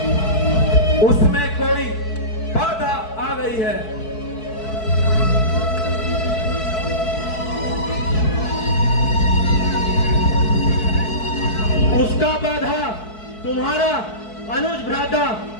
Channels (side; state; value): right; late; 4.6 ms